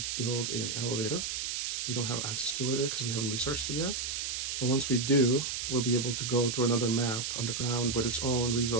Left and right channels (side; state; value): right; noise; hiss, 2 dB below the sound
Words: build an elevator. We don't have access to it because we haven't researched it yet. But once we do, we'll be able to go to another map underground with its own